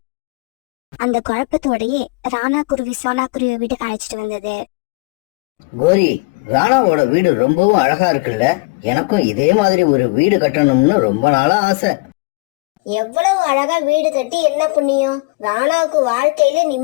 அந்த குழப்பத்தோடயே ராணா குருவி சோனா குருவி வீட்டுக்கு அழைச்சிட்டு வந்தது. கோரி, ராணாவோட வீடு ரொம்பவும் அழகா இருக்குல்ல? எனக்கும் இதே மாதிரி ஒரு வீடு கட்டணும்னு ரொம்ப நாளா ஆசை. எவ்வளவு அழகா வீடு கட்டி என்ன புண்ணியம்? ராணாவுக்கு வாழ்க்கையில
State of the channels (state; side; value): quieter; right; 26.9 dB